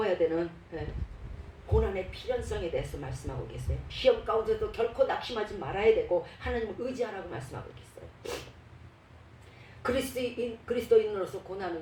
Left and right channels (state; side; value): identical; both; correlation 1.00